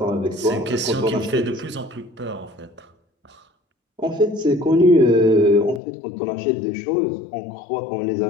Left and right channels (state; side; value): drops out; right; at 5.8 s